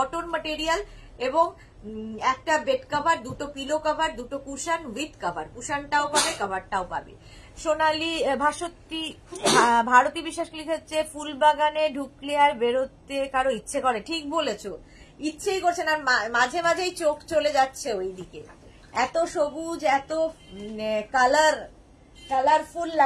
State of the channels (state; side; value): identical; both; correlation 1.00